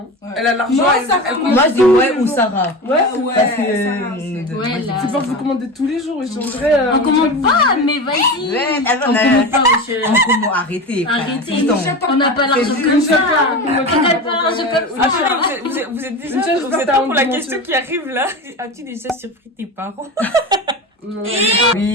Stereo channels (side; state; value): both; normal; correlation 0.26